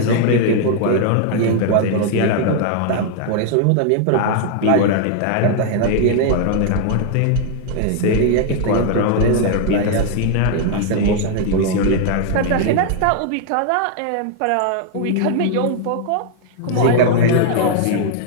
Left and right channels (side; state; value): both; different; correlation 0.00